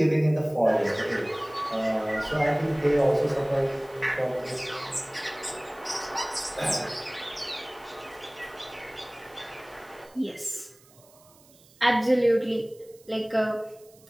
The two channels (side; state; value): right; noise; hiss, 27 dB below the sound